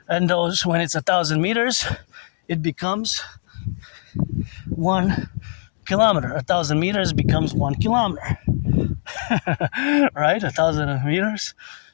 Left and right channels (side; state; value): right; silent; digital silence